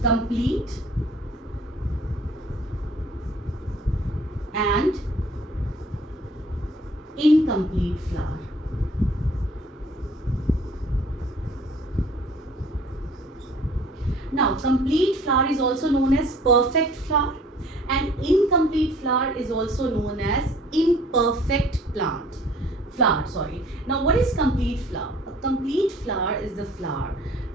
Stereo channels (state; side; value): normal; both; correlation 0.53